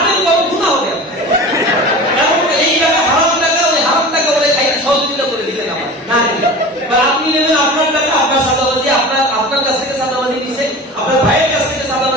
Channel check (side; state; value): both; normal; correlation 0.35